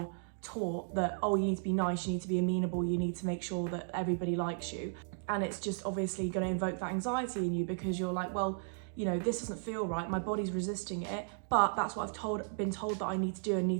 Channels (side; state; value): left; silent; digital silence